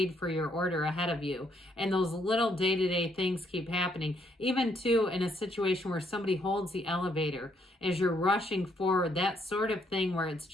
for your order ahead of you. And those little day-to-day things keep happening. Even too in a situation where somebody holds the elevator as you're rushing forward, that sort of thing where it's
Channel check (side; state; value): both; normal; correlation 0.71